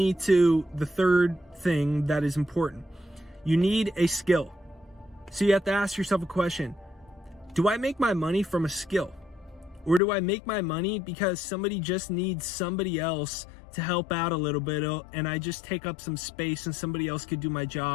to the third thing that is important. You need a skill. So you have to ask yourself a question. Do I make my money from a skill? Or do I make my money because somebody just needs somebody else to help out a little bit, and I just take up some space and somebody else could do my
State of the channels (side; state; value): right; drops out; at 10.0 s